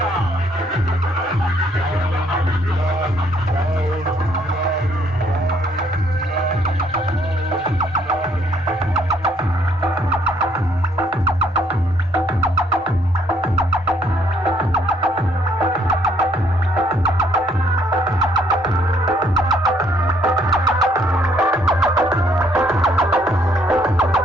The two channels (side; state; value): both; normal; correlation 0.67